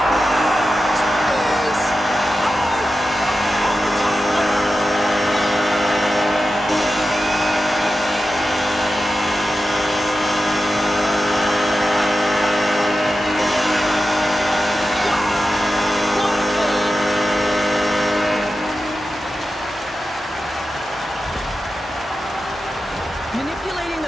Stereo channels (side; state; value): both; normal; correlation 0.91